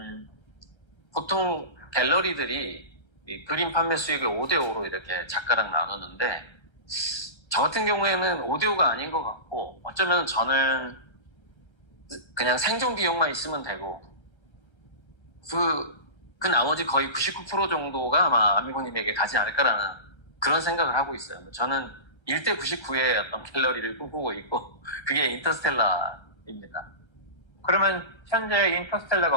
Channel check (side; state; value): right; late; 1.3 ms